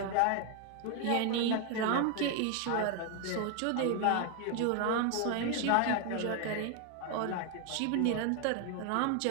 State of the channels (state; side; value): different; both; correlation 0.01